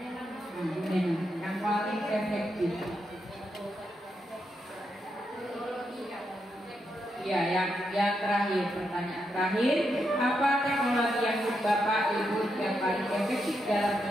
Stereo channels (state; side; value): normal; both; correlation 0.82